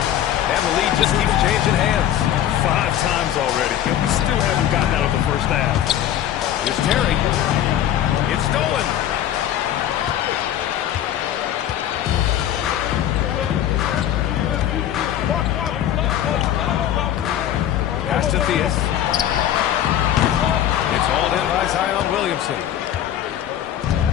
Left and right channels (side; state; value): right; quieter; 11.2 dB